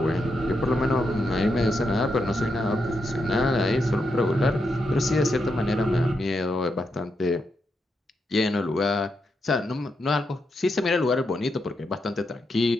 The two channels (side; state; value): both; normal; correlation 0.83